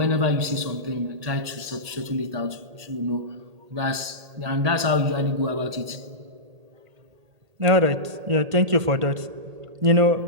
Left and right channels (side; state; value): left; late; 1.8 ms